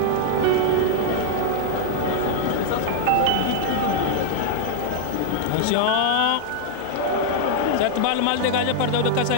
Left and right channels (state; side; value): different; both; correlation 0.00